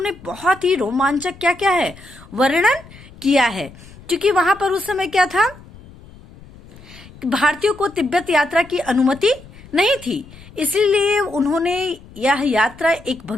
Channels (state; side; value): noise; left; rumble, 21 dB below the sound